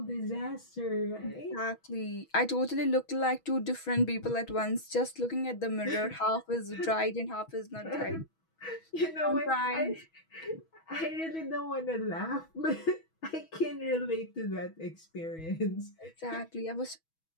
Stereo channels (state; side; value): late; right; 6.2 ms